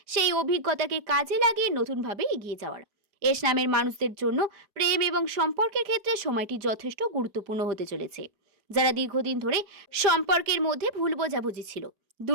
সেই অভিজ্ঞতাকে কাজে লাগিয়ে নতুনভাবে এগিয়ে যাওয়ার। এস নামের মানুষদের জন্য প্রেম এবং সম্পর্কের ক্ষেত্রে সময়টি যথেষ্ট গুরুত্বপূর্ণ হতে চলেছে। যারা দীর্ঘদিন ধরে সম্পর্কের মধ্যে ভুল বোঝাবুঝি ছিল,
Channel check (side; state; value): left; late; 4.9 ms